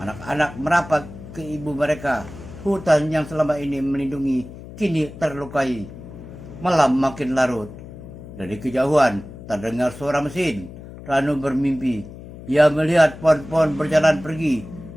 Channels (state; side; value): noise; left; hum, 15 dB below the sound